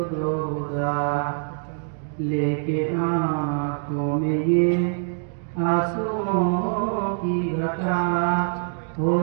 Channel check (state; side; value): silent; left; 62 dB below the other